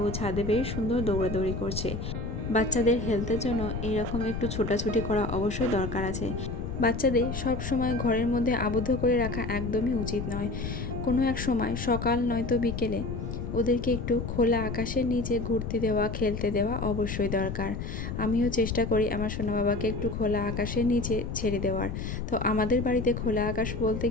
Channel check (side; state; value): left; noise; rumble, 5 dB below the sound